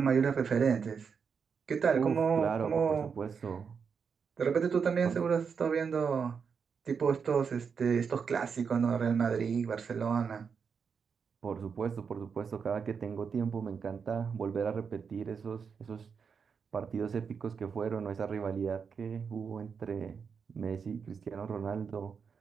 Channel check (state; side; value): quieter; left; 6.2 dB